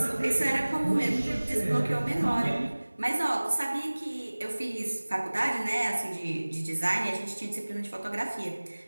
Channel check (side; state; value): both; inverted; correlation -1.00